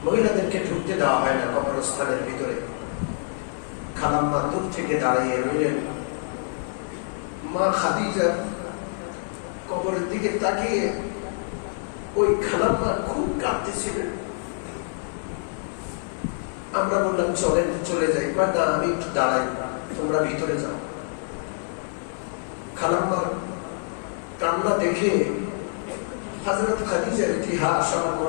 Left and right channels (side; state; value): right; silent; digital silence